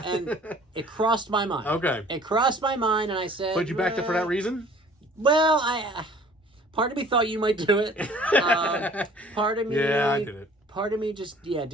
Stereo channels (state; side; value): normal; both; correlation 0.51